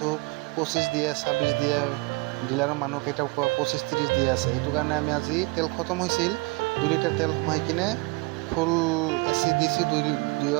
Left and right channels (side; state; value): left; quieter; 27.5 dB